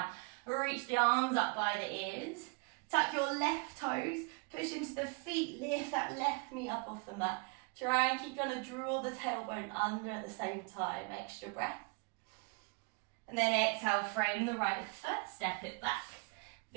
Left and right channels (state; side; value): quieter; left; 32.7 dB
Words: reach the arms up by the ears. Tuck your left toes, push into the feet, lift that left knee up off the mat. Try and keep trying to draw the tailbone under at the same time. Extra breath. And then exhale, frame the right foot, step it back.